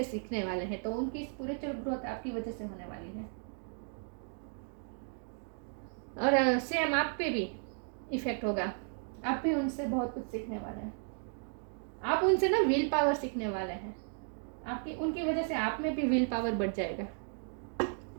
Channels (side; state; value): left; silent; 55 dB below the other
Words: सीखने वाले हैं। तो उनकी स्पिरिचुअल ग्रोथ आपकी वजह से होने वाली है, और सेम आप पे भी इफेक्ट होगा। आप भी उनसे बहुत कुछ सीखने वाले हैं, आप उनसे ना विल पावर सीखने वाले हैं। उनकी वजह से आप में भी विल पावर बढ़ जाएगा।